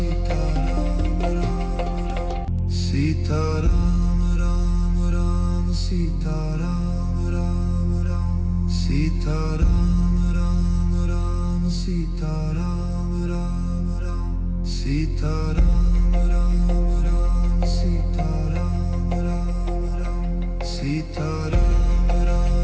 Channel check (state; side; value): identical; both; correlation 1.00